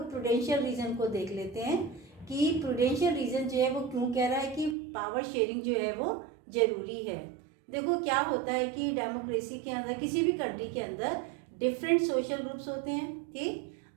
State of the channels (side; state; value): left; drops out; at 4.8 s